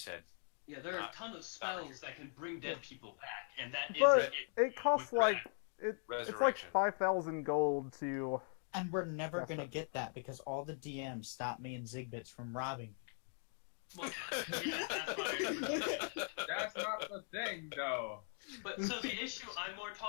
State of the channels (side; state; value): right; silent; 51 dB below the other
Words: said. Yeah, there are a ton of spells that can bring dead people back, and that is But it costs with like it's like Resurrection. 5,000 gold to. And we're never That's gonna what- get that because all the DMs stop me and Zigbits from robbing. well, yeah, that's fine. That's not the thing, though. But so the issue I'm more